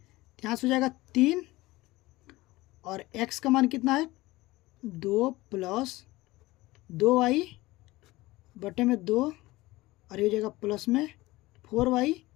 यहाँ से हो जाएगा 3 और x का मान कितना है 2 प्लस 2y बटे में 2 और ये हो जाएगा प्लस में 4y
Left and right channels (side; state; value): right; quieter; 19.5 dB